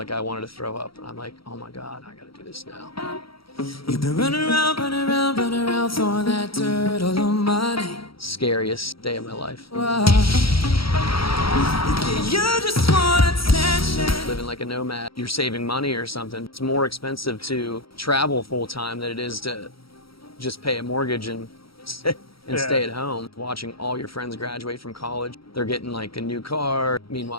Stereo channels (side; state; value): right; late; 0.75 ms